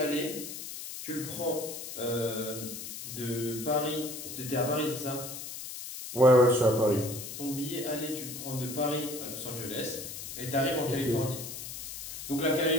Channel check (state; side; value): noise; left; hiss, 9 dB below the sound